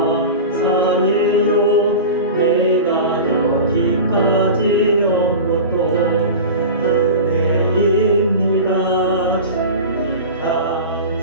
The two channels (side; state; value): both; inverted; correlation -0.31